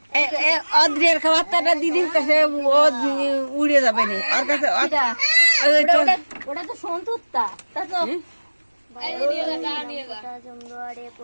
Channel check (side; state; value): both; inverted; correlation -1.00